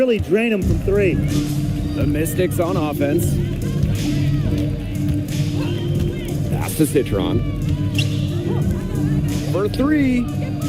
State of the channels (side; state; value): both; identical; correlation 1.00